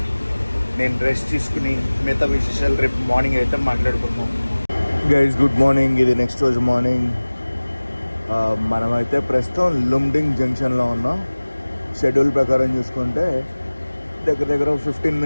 నేను రెస్ట్ తీసుకుని మిగతా విశేషాలు రేపు మార్నింగ్ అయితే మాట్లాడుకుందాం. Guys good morning. ఇది నెక్స్ట్ రోజు మార్నింగ్. మనమైతే ప్రస్తుతం లుమ్డింగ్ జంక్షన్లో ఉన్నాం. షెడ్యూల్ ప్రకారం చూసుకుంటే దగ్గర దగ్గర 15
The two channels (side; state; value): both; inverted; correlation -1.00